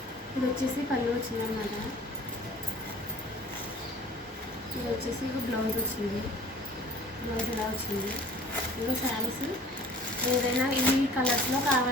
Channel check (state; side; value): normal; both; correlation 0.48